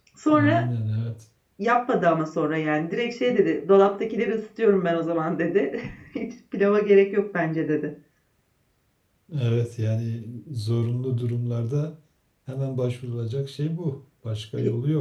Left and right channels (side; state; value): both; identical; correlation 1.00